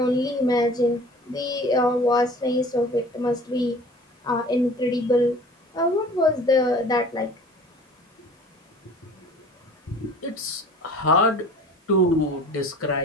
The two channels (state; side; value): normal; both; correlation 0.46